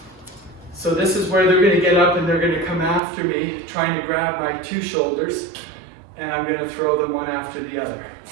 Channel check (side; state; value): left; drops out; at 3.0 s